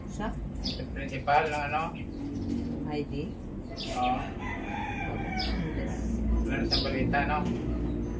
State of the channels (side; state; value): both; identical; correlation 1.00